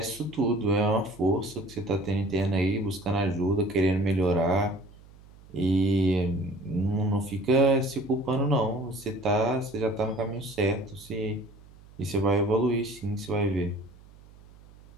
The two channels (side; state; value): right; noise; hum, 23 dB below the sound